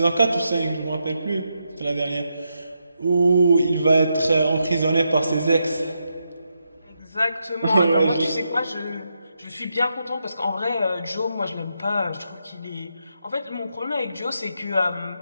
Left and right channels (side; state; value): both; inverted; correlation -0.83